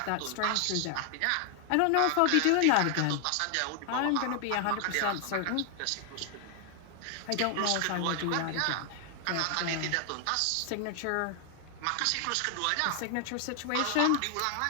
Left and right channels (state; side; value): different; both; correlation 0.00